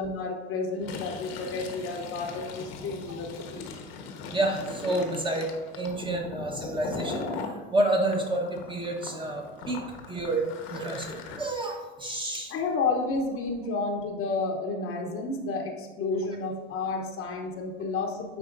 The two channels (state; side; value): normal; both; correlation 0.30